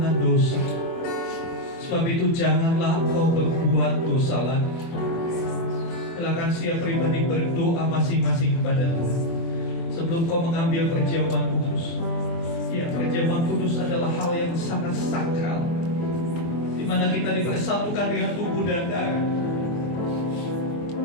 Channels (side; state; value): right; late; 24 ms